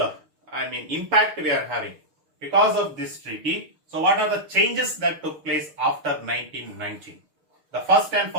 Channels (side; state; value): left; late; 6.6 ms